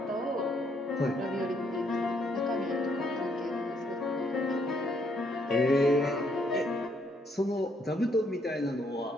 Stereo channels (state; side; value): normal; both; correlation 0.71